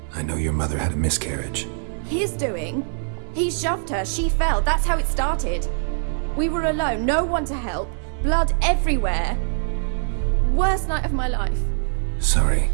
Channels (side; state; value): left; silent; digital silence